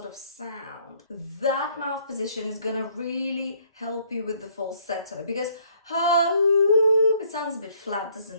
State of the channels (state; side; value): inverted; both; correlation -0.64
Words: of sound. That mouth position is going to really help you with the falsetto because ho, it sounds a bit flat,